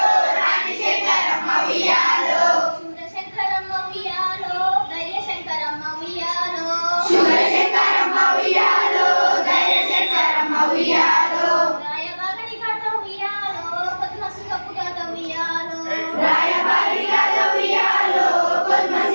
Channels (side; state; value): both; inverted; correlation -1.00